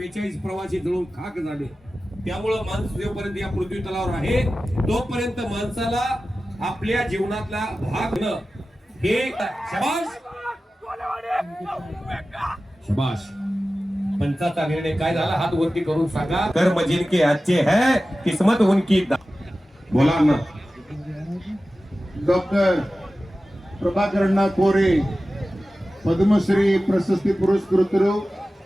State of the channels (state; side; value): normal; both; correlation 0.95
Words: प्रवासी जळून खाक झाले. त्यामुळं माणूस जोपर्यंत या पृथ्वी तलावर आहे तोपर्यंत माणसाला आपल्या जीवनातला भाग न हे शबाश शबाश. पंचाचा निर्णय काय झाला हात वरती करून सांगा. कर्म जिनके अच्छे है किस्मत उनकी. बोला ना. ಡಾಕ್ಟರ್ ಪ್ರಭಾಕರಣ್ಣ ಕೋರೆ ಪದ್ಮಶ್ರೀ ಪ್ರಶಸ್ತಿ ಪುರಸ್ಕೃತರು